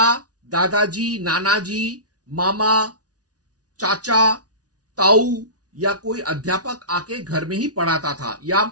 दादाजी, नानाजी, मामा, चाचा, ताऊ या कोई अध्यापक आके घर में ही पढ़ाता था, या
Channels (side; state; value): left; late; 0.68 ms